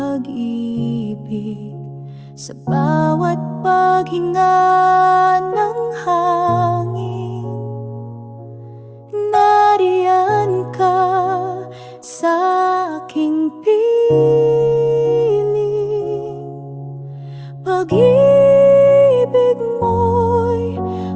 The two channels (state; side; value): identical; both; correlation 1.00